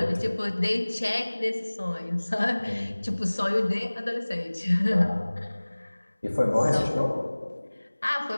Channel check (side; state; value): both; inverted; correlation -1.00